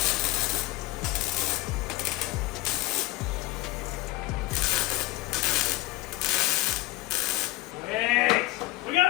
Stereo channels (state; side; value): quieter; right; 19.6 dB